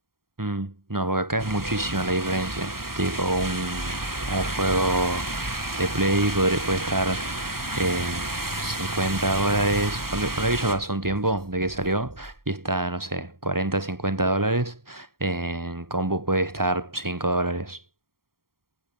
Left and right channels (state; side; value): late; left; 0.93 ms